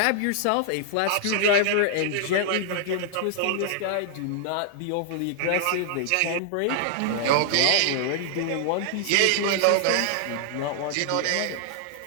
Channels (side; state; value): both; different; correlation -0.01